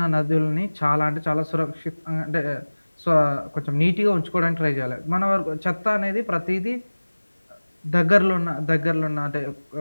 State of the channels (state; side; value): inverted; both; correlation -1.00